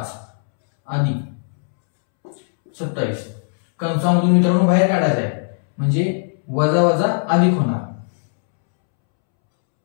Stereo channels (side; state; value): right; silent; 67 dB below the other